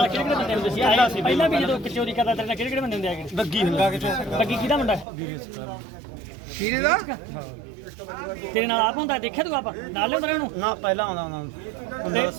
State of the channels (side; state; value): left; drops out; at 5.1 s